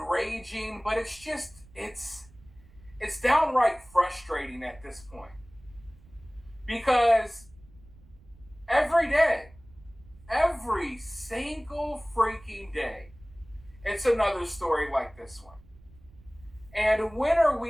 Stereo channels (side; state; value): right; noise; rumble, 24 dB below the sound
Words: but it's downright frustrating at this point. Because every day, every single freaking day, it's another story like this one. And when are